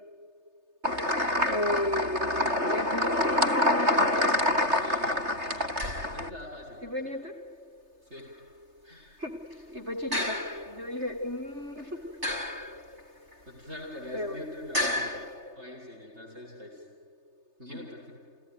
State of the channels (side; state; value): left; late; 3.3 ms